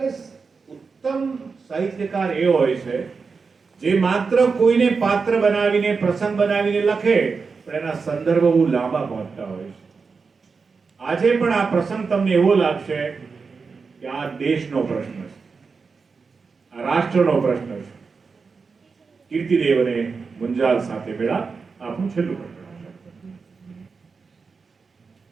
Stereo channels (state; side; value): quieter; left; 4.9 dB